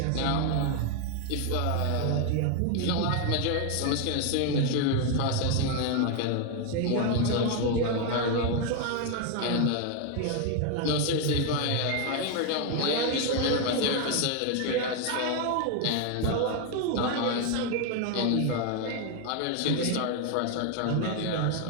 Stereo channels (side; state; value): both; different; correlation 0.01